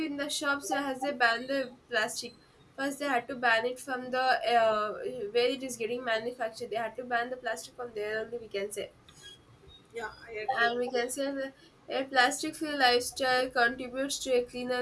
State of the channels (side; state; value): both; identical; correlation 1.00